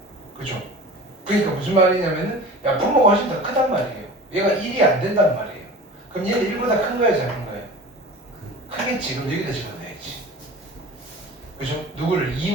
그죠? 그러니까 무슨 말이냐면은 야 분모가 훨씬 더 크단 말이에요. 얘가 1이 안 된단 말이에요. 그럼 얘는 1보다 큰 거예요, 작은 거예요? 크겠지. 그럼 여기다 집어넣어야지. 그죠? 누구를?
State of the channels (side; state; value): both; normal; correlation 0.38